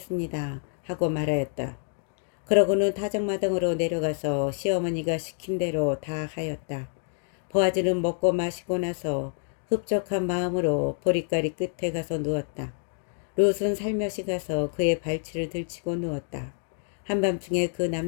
하고 말하였다. 그러고는 타작마당으로 내려가서 시어머니가 시킨 대로 다 하였다. 보아즈는 먹고 마시고 나서 흡족한 마음으로 보리가리 끝에 가서 누웠다. 룻은 살며시 가서 그의 발치를 들치고 누웠다. 한밤중에 그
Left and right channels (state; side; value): silent; right; 60 dB below the other